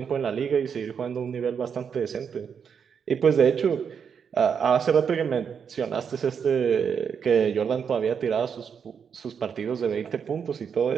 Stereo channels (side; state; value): left; quieter; 7.0 dB